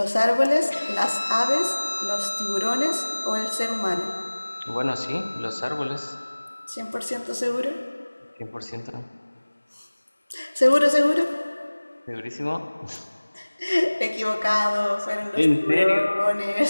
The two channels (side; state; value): both; inverted; correlation -1.00